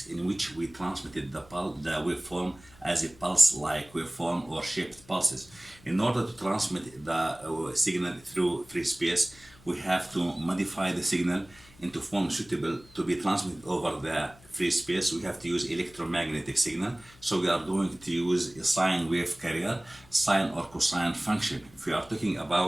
in which we transmitted the waveform as a pulse-like waveform or shaped pulses. In order to transmit the signal through free space, we have to modify the signal into form suitable to be transmitted over the free space. We have to use electromagnetic signal. So we are going to use a sine wave carrier, sine or cosine function. If we are talking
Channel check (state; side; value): noise; left; hum, 25 dB below the sound